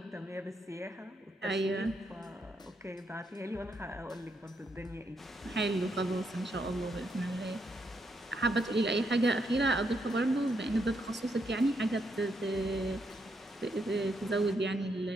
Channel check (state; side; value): normal; both; correlation 0.78